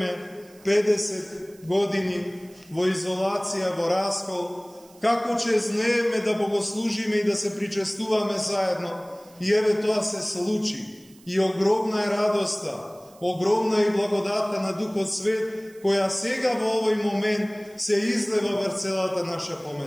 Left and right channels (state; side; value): noise; right; hiss, 27 dB below the sound